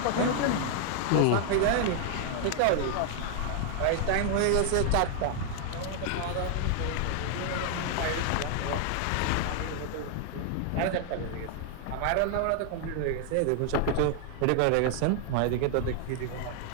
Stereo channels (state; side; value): different; both; correlation 0.00